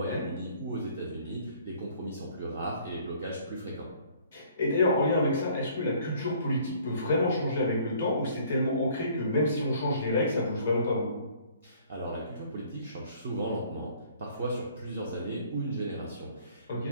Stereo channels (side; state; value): both; inverted; correlation -0.57